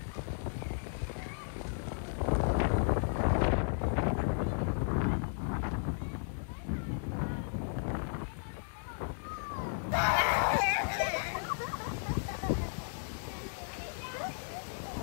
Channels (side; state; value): right; silent; digital silence